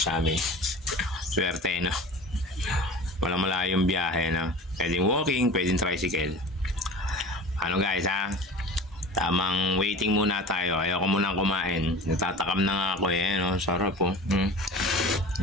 amin. Swerte, Walang malayong biyahe, Pwedeng walking, pwedeng tricycle. Guys, tamang waiting muna tayo. Ayoko munang kumain. Natatakam na nga ako Sarap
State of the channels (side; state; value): both; normal; correlation 0.38